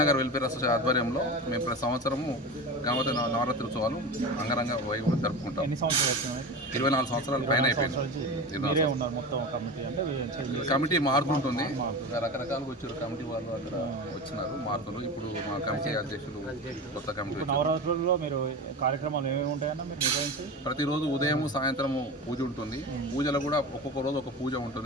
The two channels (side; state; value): both; normal; correlation 0.28